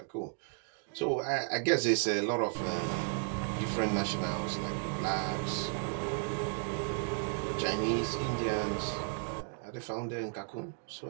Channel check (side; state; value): left; silent; 55 dB below the other